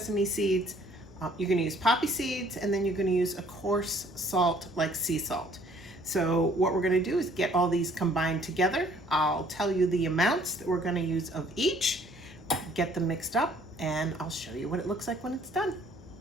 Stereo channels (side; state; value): both; normal; correlation 0.59